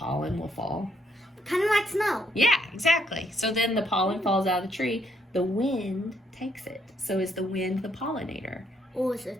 will fall? Kind of like snow. Yeah, exactly. So then the pollen falls out of the tree, the wind takes it. So is the wind the pollinator? Or is a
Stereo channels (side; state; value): both; normal; correlation 0.72